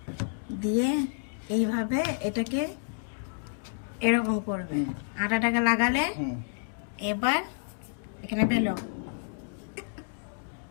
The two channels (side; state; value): right; silent; digital silence